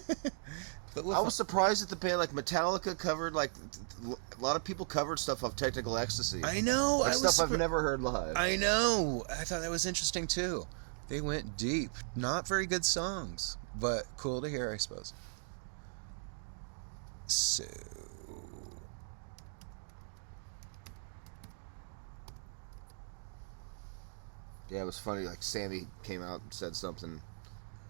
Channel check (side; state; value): left; silent; digital silence